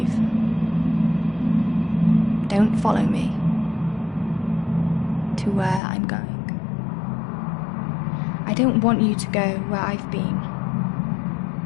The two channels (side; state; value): right; drops out; at 5.8 s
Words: Don't follow me to where I'm going. I don't want you to go where I've been